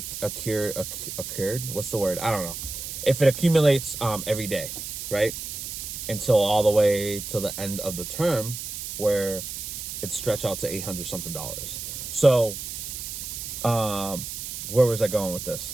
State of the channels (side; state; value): right; noise; hiss, 7 dB below the sound